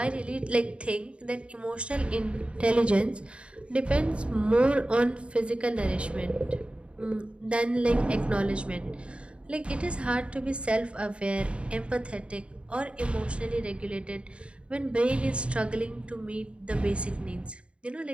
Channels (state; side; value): late; left; 0.058 ms